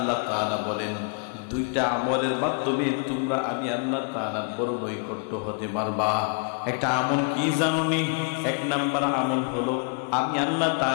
তাআলা বলেন দুইটা আমলের মাধ্যমে তোমরা আমি আল্লাহ তাআলার বড় নৈকট্য হতে পারবা। একটা আমল কি জানোনি? এক নাম্বার আমল হলো আমি আল্লাহ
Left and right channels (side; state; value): right; quieter; 38.3 dB